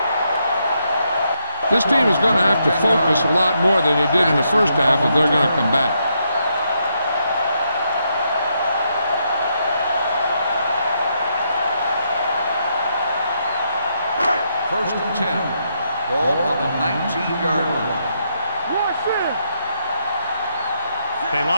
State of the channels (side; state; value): both; inverted; correlation -0.78